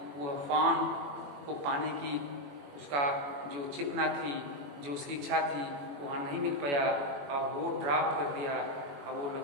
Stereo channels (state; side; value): late; left; 21 ms